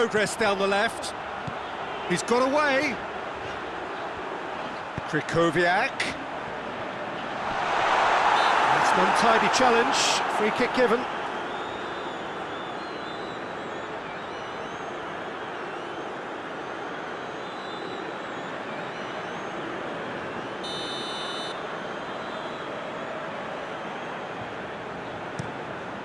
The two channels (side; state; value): both; identical; correlation 1.00